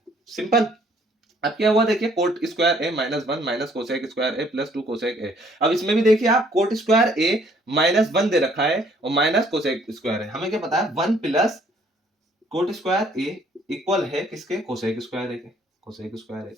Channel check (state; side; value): normal; both; correlation 0.62